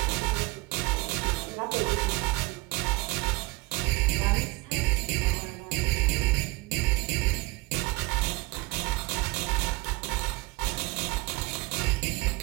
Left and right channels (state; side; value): quieter; left; 23.3 dB